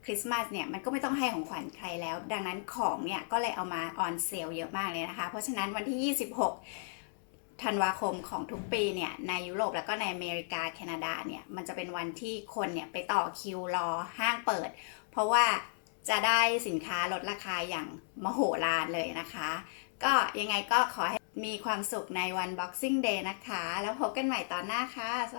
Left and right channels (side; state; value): right; silent; digital silence